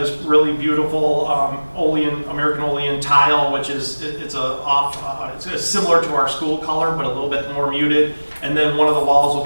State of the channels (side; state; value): both; inverted; correlation -1.00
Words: this really beautiful American Olean tile, which is it's similar to our school color, but a little bit more muted. And then one of the walls will